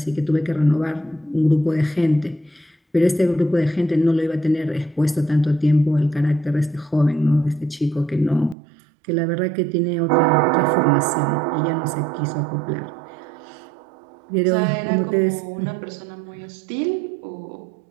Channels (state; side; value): drops out; left; at 8.6 s